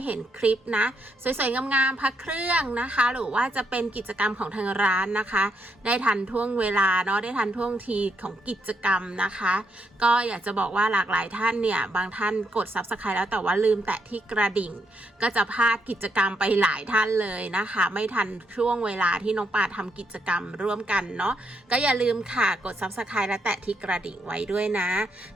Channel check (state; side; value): normal; both; correlation 0.77